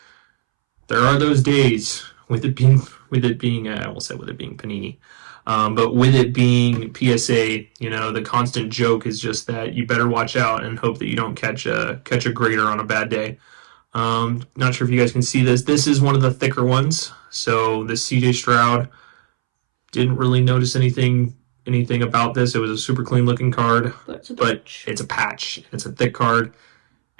there are those days with it being I almost said with it being Panini. But with it being PSA, you know, the constant joke is just that you better watch out and hope that you don't catch a grader on a bad day. Not sure if you guys can see this. This is one of the thicker ones. So the CJ Stroud, didn't really notice anything about this. It was a super clean looking card, but it's a patch. It's a thick card,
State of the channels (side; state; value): left; silent; 67 dB below the other